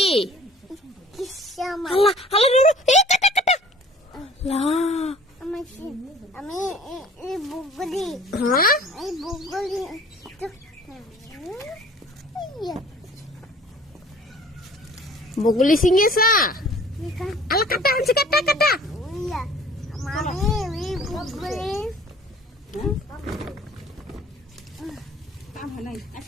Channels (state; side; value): normal; both; correlation 0.50